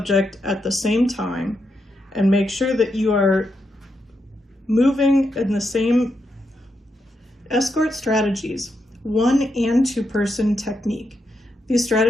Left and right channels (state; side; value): normal; both; correlation 0.83